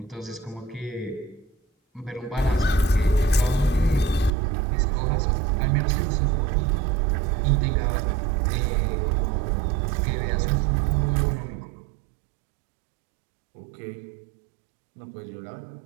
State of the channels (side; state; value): left; drops out; at 4.3 s